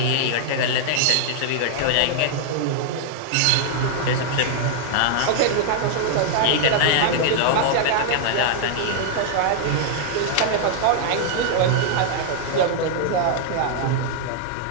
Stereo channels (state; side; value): different; both; correlation -0.01